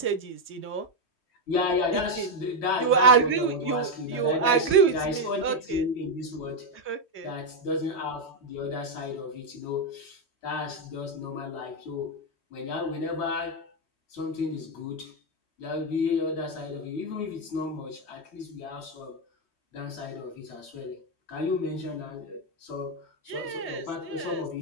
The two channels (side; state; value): right; late; 3.2 ms